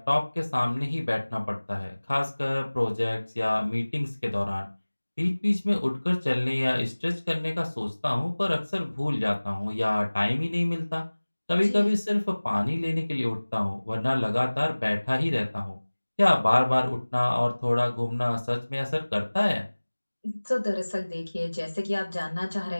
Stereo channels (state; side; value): inverted; both; correlation -1.00